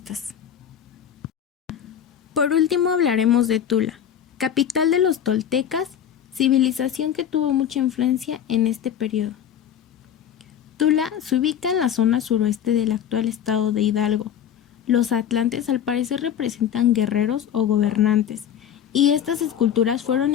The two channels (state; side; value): quieter; right; 9.4 dB